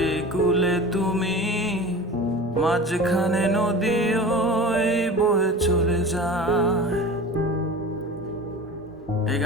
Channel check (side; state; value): both; normal; correlation 0.36